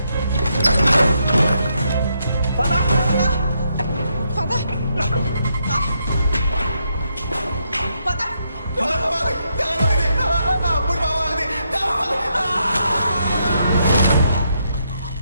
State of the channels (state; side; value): inverted; both; correlation -0.78